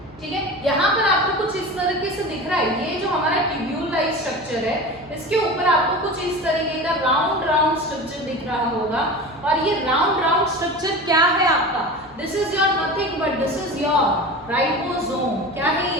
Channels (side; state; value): both; normal; correlation 0.32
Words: ठीक है। यहाँ पर आपको कुछ इस तरीके से दिख रहा है, ये जो हमारा ट्यूब्यूल लाइक स्ट्रक्चर है, इसके ऊपर आपको कुछ इस तरीके का राउंड राउंड स्ट्रक्चर दिख रहा होगा। और ये राउंड राउंड स्ट्रक्चर क्या है आपका, this is your nothing but this is your ribosome. क्या है